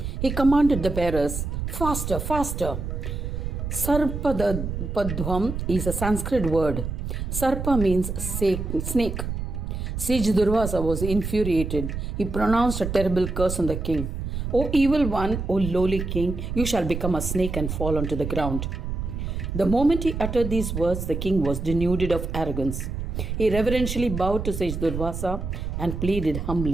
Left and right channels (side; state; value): right; noise; rumble, 4 dB below the sound